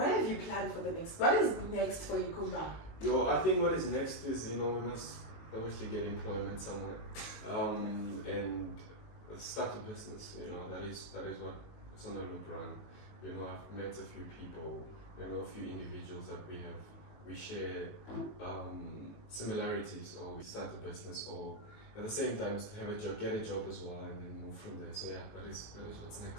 have you planned for the next? What is next for Yakuma? I think what is next is, you know, we must obviously get employment somewhere, and start a business. You know, that is what it's on a loop run. You know, I've met a few people, you know, a few individuals that we share similarities, or we start a business, or at the same time have a job, get a job as well, and then move from there. So yeah, that is what's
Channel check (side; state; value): right; late; 19 ms